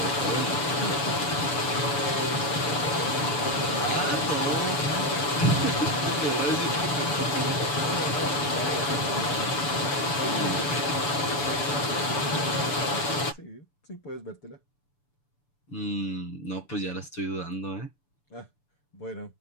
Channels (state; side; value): late; right; 7.2 ms